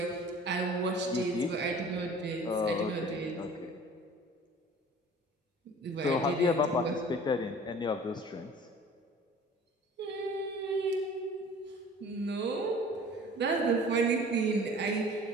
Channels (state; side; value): normal; both; correlation 0.46